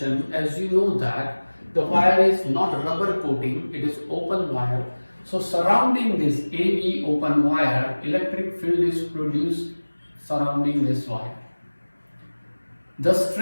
as you know that the wire is not rubber coating, it is open wire. So surrounding this AB open wire, electric field is produced surrounding this wire. The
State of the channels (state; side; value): inverted; both; correlation -1.00